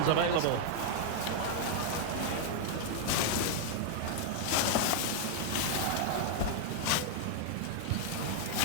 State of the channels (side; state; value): both; different; correlation 0.00